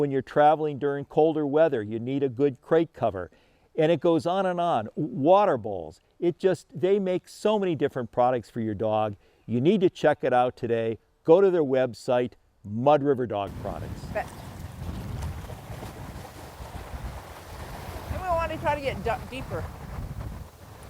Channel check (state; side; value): identical; both; correlation 1.00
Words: you're traveling during colder weather, you need a good crate cover. And it goes on and on. Water bowls. They make so many different products for your dog. You need to check it out today. Go to their website, Mud River Dog Products. Bet. And we want to try to get deeper.